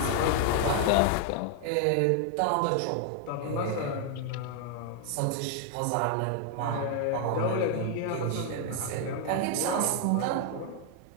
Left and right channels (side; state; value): both; different; correlation 0.00